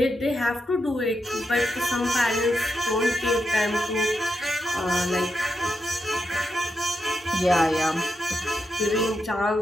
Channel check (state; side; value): normal; both; correlation 0.85